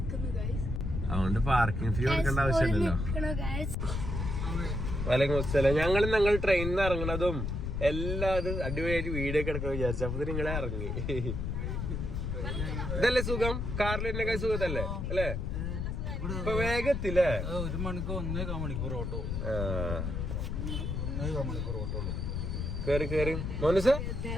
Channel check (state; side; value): noise; left; rumble, 2 dB below the sound